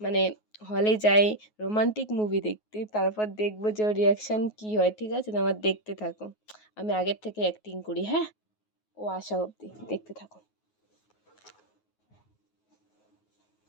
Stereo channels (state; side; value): late; right; 9.4 ms